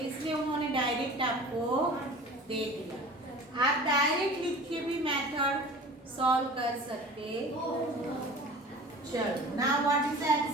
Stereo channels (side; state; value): both; normal; correlation 0.40